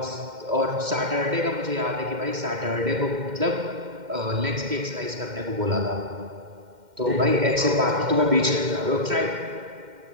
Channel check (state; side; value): late; left; 2.1 ms